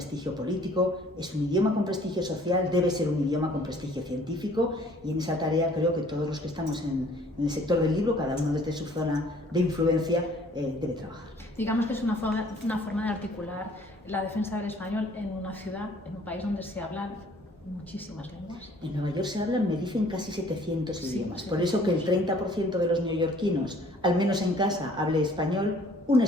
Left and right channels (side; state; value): both; normal; correlation 0.56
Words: político, es un idioma con prestigio social, debe ser un idioma con prestigio científico, y en esa tarea creo que todos los que estamos en el sector del libro, cada uno desde su zona de influencia, debe trabajar. Digamos que es una forma de articular la defensa del español en una ciudad, en un país donde se hablan muchísimas lenguas. En Nueva York se hablan, me dicen, casi 700 Sí, idiomas. sí, Por eso que el 30% de los neoyorquinos, al menos en casa, hable español, un